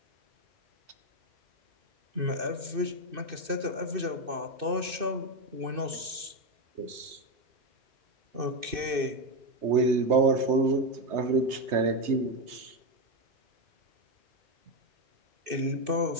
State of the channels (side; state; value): left; late; 2.6 ms